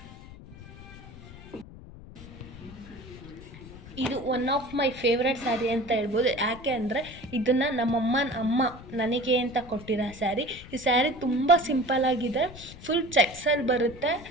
one of my favourite sari ಅಂತ ಹೇಳ್ಬೋದು. ಯಾಕೆ ಅಂದರೆ ಇದನ್ನು ಅಮ್ಮ ನನಗೆ ಅಂತ ಕೊಟ್ಟಿರೋ ಸ್ಯಾರಿ. ಈ ಸ್ಯಾರಿ ತುಂಬ ಸಿಂಪಲ್ಲಾಗಿದೆ, ಫುಲ್ ಚೆಕ್ಸಲ್ಲಿ ಬರುತ್ತೆ.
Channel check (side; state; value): left; noise; rumble, 16 dB below the sound